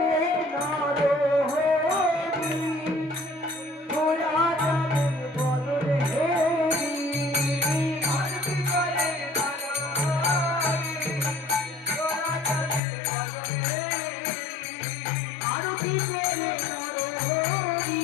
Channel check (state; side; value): drops out; right; at 12.8 s